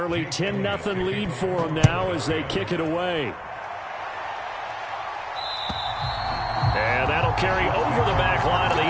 10-0 lead for them now as they kick it away. And that'll carry over the back line of the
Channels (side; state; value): both; identical; correlation 1.00